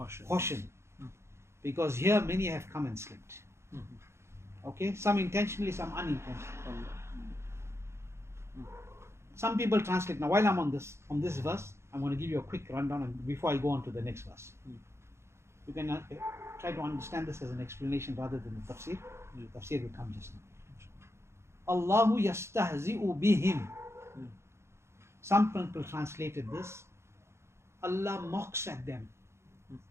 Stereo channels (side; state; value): left; late; 0.13 ms